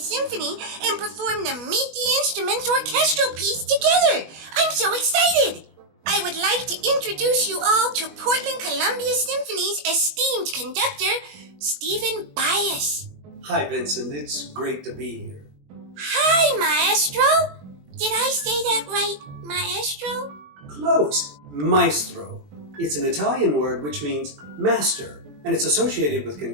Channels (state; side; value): late; left; 21 ms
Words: and perform the Meet the Instruments orchestral piece together. I'm so excited! I would like to introduce you all to Portland Columbia Symphony's esteemed conductor, Stephen Bias. Hi, Vincent. It's great to be here. Hi, Maestro! Did I say that right, Maestro? Close. Maestro. It's an Italian word which means master, and it's associated with